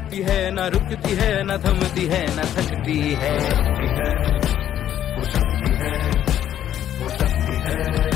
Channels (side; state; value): right; quieter; 10.9 dB